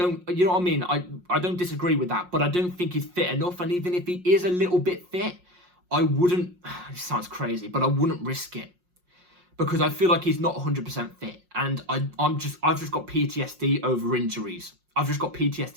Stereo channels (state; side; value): late; left; 5.6 ms